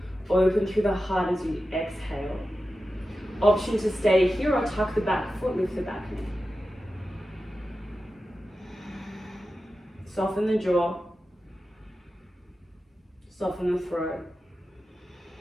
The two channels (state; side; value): normal; both; correlation 0.92